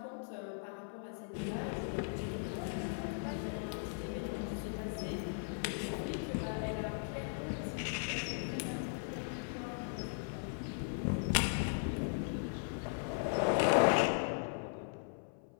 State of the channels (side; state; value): right; silent; 52 dB below the other